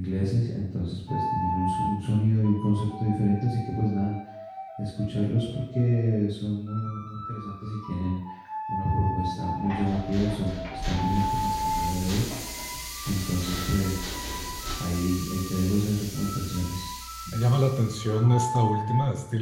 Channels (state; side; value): identical; both; correlation 1.00